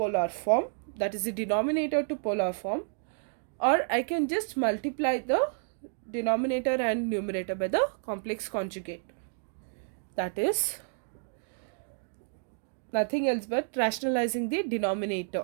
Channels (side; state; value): left; silent; digital silence